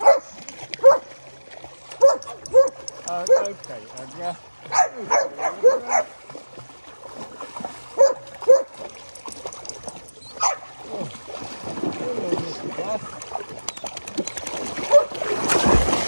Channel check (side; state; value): both; inverted; correlation -1.00